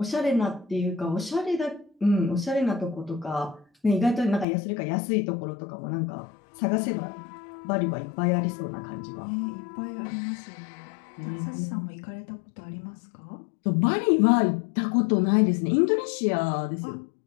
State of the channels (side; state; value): right; drops out; at 4.5 s